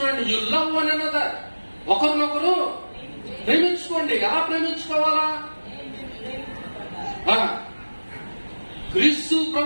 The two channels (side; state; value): both; inverted; correlation -1.00